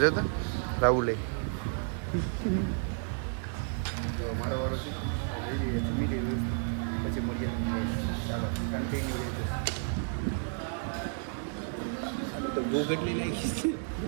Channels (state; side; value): silent; left; 57 dB below the other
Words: તો રાહુલે તો મારો વારો છે લઈ લઈએ જમી લઈએ પછી મળીએ. ચાલો કન્ટિન્યુ રહેજો. તો ભૂખ એટલી લાગી છે